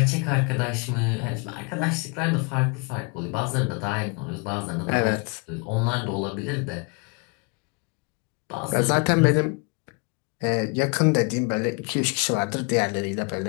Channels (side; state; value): right; quieter; 32.6 dB